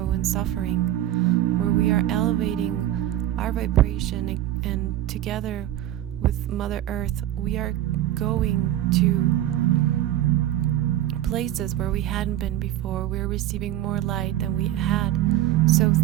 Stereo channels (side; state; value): left; quieter; 13.0 dB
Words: and suffering, where we are elevating our vibration, and together with Mother Earth, we are going to places where we hadn't been before. We're receiving more light than we had. So